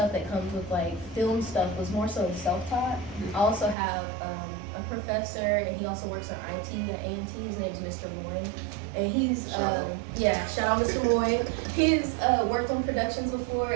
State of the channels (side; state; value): left; drops out; at 3.8 s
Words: that comes with like film stuff was more so self-taught. I also have a professor, and he also works on IT at A&T. His name is Mr. Moy. And he's, shout out Mr. Moy. He's worked on productions before,